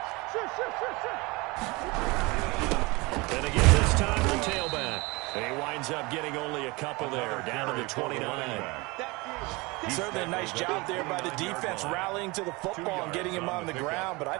And again this time the tailback. He winds up getting only a couple there, down to the 29. Certainly a nice job there by the defense rallying to the football and getting him on the ground, but I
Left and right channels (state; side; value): quieter; left; 24.8 dB